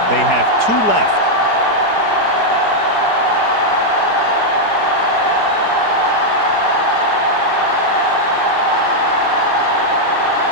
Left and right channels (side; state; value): right; late; 4.7 ms